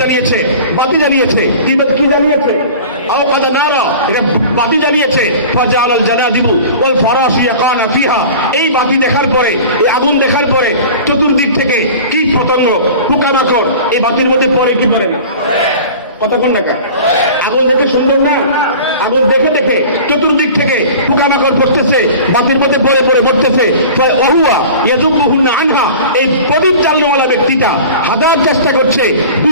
বাতি জ্বালিয়েছে, কি জ্বালিয়েছে? আওকাদা নারা, এটা বাতি জ্বালিয়েছে, ফাজালাল জানাদিবু ওয়াল ফারাশু ইয়াকানা ফিহা, এই বাতি দেখার পরে, এই আগুন দেখার পরে চতুর্দিক থেকে কীট পতঙ্গ, পোকামাকড় এই বাতির মধ্যে পড়ে কি পড়ে না? কতক্ষণ না? আগুন দেখে সুন্দর না? আগুন দেখে দেখে চতুর্দিক থেকে পোকামাকড় পড়তেছে, বাতির মধ্যে পড়ে পড়ে পড়তেছে। ওহুয়া ইয়াযুবুহুন্না আনহা, এই প্রদীপ জ্বালানোওয়ালা ব্যক্তিটা হাজার চেষ্টা করছে,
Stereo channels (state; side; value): inverted; both; correlation -0.39